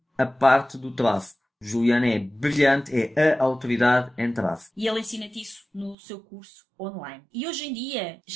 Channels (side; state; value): left; drops out; at 6.0 s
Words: a parte do tráfego. Juliano é brilhante, é a autoridade em tráfego. E ele ensina-te isso no seu curso online. E hoje em dia